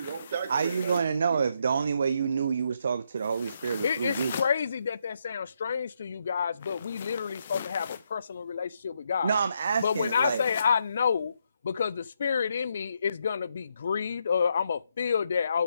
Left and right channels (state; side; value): inverted; both; correlation -0.78